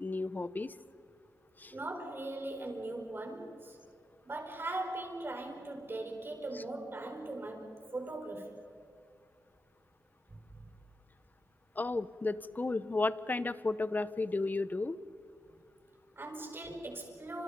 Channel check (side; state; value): both; normal; correlation 0.88